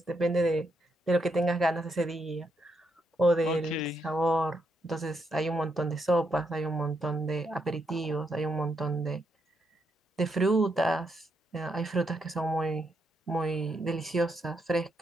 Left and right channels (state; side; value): normal; both; correlation 0.79